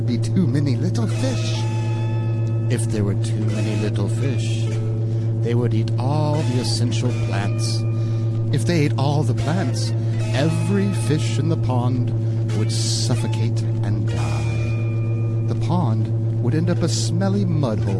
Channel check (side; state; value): both; identical; correlation 1.00